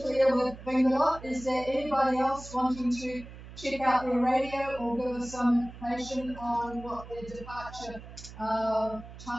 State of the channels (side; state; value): right; noise; hum, 15 dB below the sound